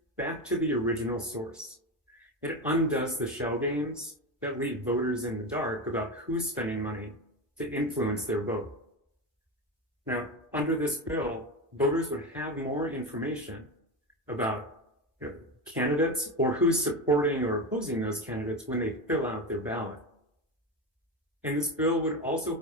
back to the original source. It undoes the shell games that leave voters in the dark about who's spending money to influence their vote. Now, under this bill, voters would have more information about candidates or who's supporting or opposing those candidates when they fill out their ballot. And this bill would also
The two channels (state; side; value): normal; both; correlation 0.19